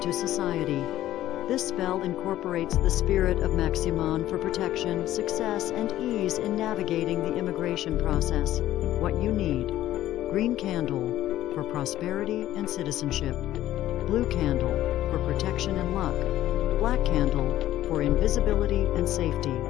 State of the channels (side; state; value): right; quieter; 13.7 dB